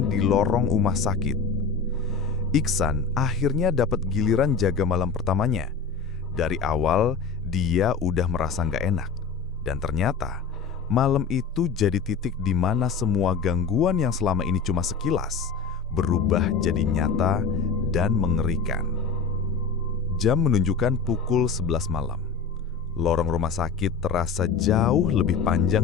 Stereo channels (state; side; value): quieter; right; 5.3 dB